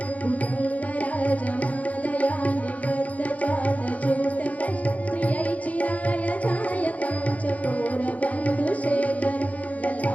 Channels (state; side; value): late; right; 0.069 ms